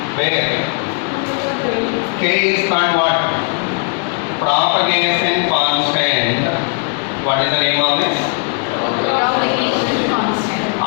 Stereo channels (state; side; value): quieter; right; 38.7 dB